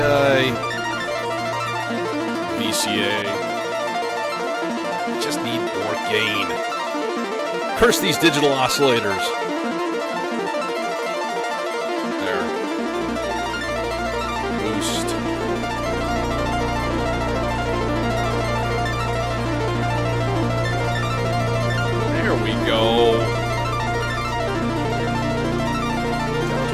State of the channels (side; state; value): both; identical; correlation 1.00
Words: VCA. just need more gain. Curse these digital oscillators. There. Boost. There we go. Down to